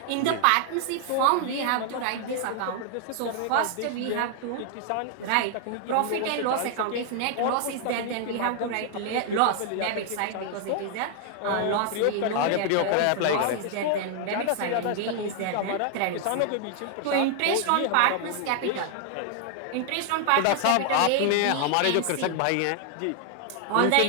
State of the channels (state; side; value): different; both; correlation 0.00